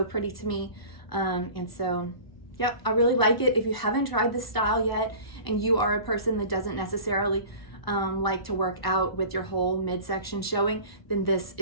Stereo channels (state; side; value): late; right; 1.0 ms